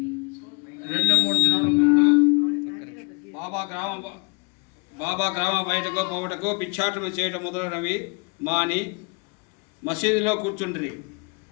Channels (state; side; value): quieter; right; 32.7 dB